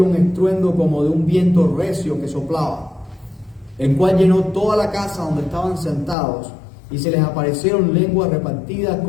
un estruendo como de un viento recio que soplaba, el cual llenó toda la casa donde estaban sentados, y se les aparecieron lenguas repartidas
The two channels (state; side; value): drops out; right; at 6.2 s